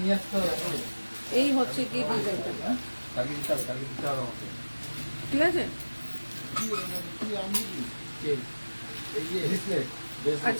এই হচ্ছে কি ডিজাইনটা, ঠিক আছে।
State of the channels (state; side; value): inverted; both; correlation -1.00